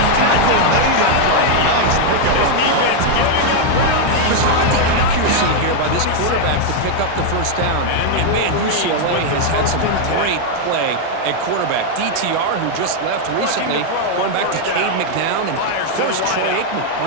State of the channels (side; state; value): both; different; correlation 0.00